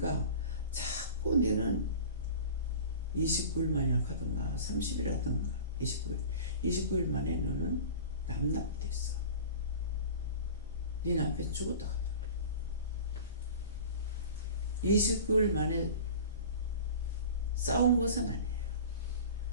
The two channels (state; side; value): inverted; both; correlation -0.38